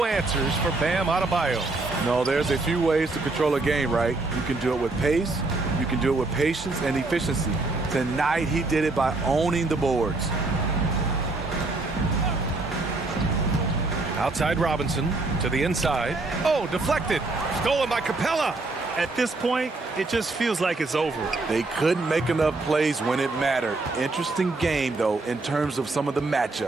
answers for Bam Adebayo. No, there's a few ways to control a game, right? You can do it with pace, you can do it with patience and efficiency. Tonight, he did it by owning the boards. Outside Robinson to the inside. Oh, deflected. Stolen by Capella. At this point, it just feels like it's over. They couldn't make enough plays when it mattered. Interesting game, though, in terms of some of the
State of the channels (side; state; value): left; quieter; 3.3 dB